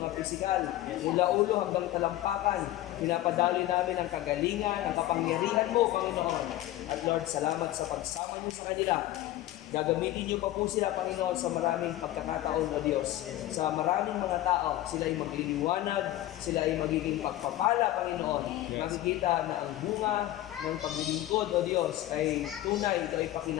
pisikal. Mula ulo hanggang talampakan, pinapadali namin ang kagalingan, ang kapangyarihan mo, Panginoon. At Lord, salamat sa pagsama niyo sa kanila. Gagamitin niyo pa po sila, Panginoon, sa maraming pagkakataon na Diyos. Sa maraming mga tao, sila ay magliliwanag, sila ay magiging pagpapala, Panginoon. Makikita na ang bunga ng paglilingkod, O Diyos, ay tunay, ito ay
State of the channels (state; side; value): quieter; right; 15.0 dB